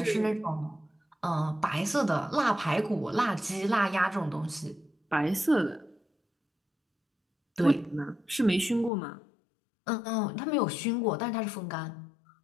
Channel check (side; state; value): right; drops out; at 8.9 s